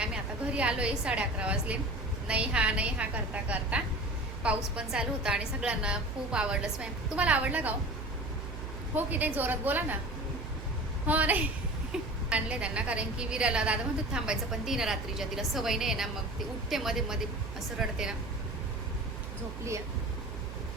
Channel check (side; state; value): right; noise; hum, 9 dB below the sound